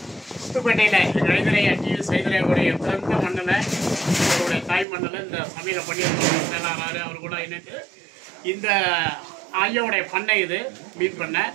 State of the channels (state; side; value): drops out; left; at 4.9 s